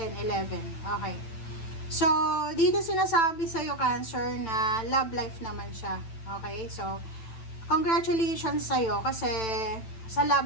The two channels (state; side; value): late; right; 9.0 ms